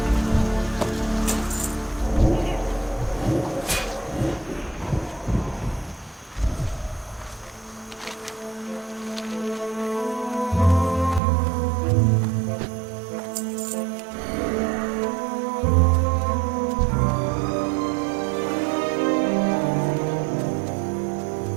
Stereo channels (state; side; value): drops out; left; at 11.2 s